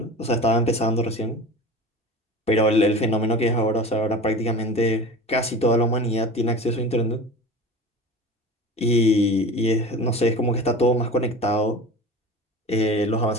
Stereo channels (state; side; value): normal; both; correlation 0.34